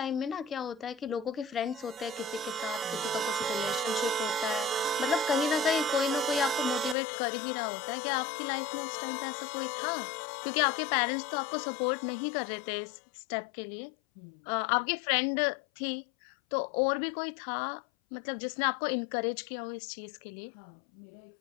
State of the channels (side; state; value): right; drops out; at 7.0 s